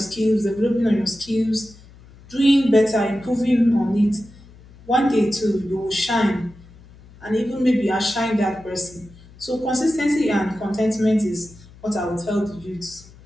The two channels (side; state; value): left; noise; hum, 23 dB below the sound